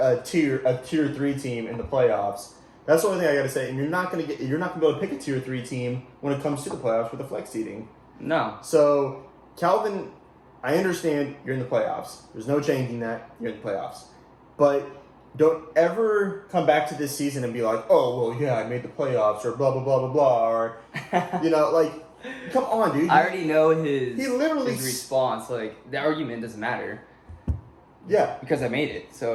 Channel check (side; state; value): both; identical; correlation 1.00